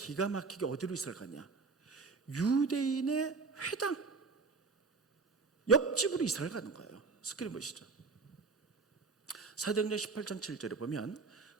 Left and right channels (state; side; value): quieter; left; 4.4 dB